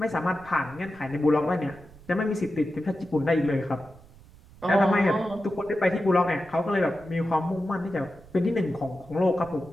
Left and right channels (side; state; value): right; noise; rumble, 23 dB below the sound